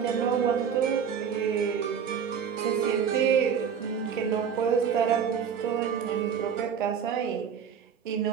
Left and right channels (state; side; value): quieter; left; 7.4 dB